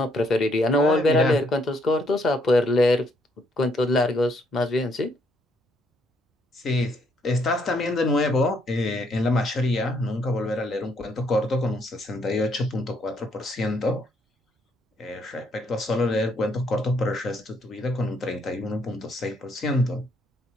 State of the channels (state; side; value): normal; both; correlation 0.71